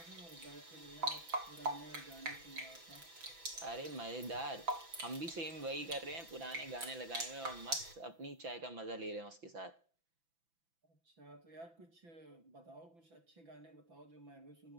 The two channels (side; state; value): left; late; 6.0 ms